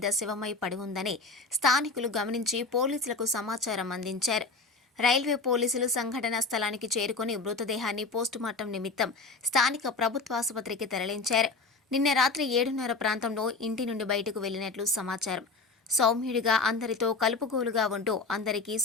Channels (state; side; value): quieter; right; 3.9 dB